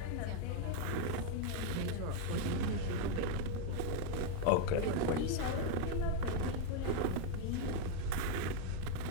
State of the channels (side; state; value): both; different; correlation 0.00